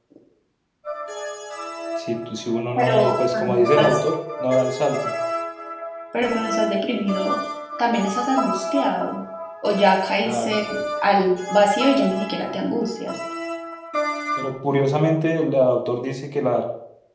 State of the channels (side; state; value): both; identical; correlation 1.00